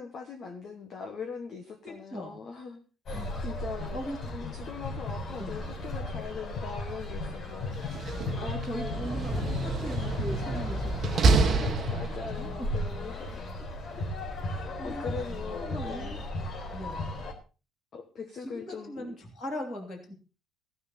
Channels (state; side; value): normal; both; correlation 0.64